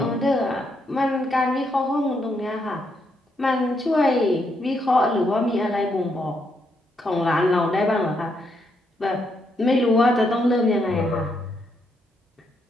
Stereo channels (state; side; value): normal; both; correlation 0.78